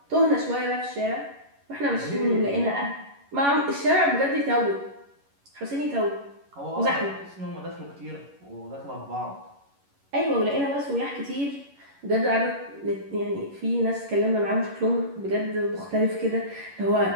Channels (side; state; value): left; late; 11 ms